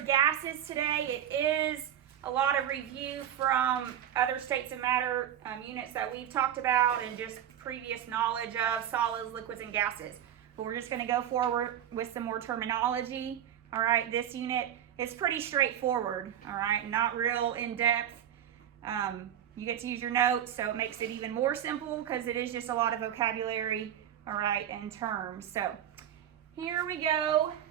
gases today. It is a lot of review from other states of matter units that we've talked about and just previous knowledge of solids, liquids, and gases. But we're just going to go forward with some more terminology. All right, this unit is pretty straightforward. All right, not real in-depth. You get to use your notes, so it makes it even more simple because it is just a lot of vocabulary, all right, and terms. So here we go.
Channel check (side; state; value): left; quieter; 10.4 dB